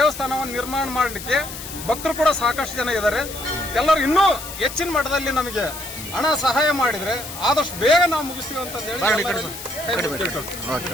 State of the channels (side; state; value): left; noise; hiss, 11 dB below the sound